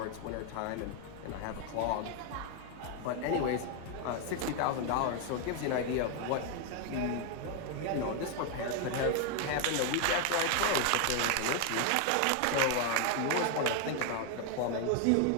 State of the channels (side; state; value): both; different; correlation 0.01